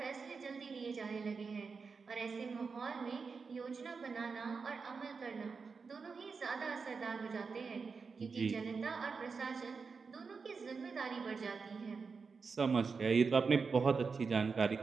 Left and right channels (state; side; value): quieter; left; 5.0 dB